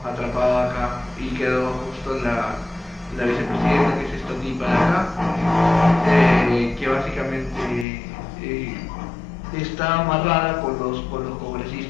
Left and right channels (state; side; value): drops out; right; at 7.9 s